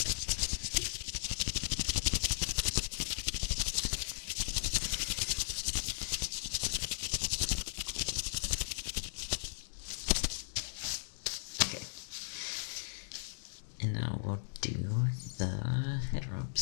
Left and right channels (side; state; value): right; silent; digital silence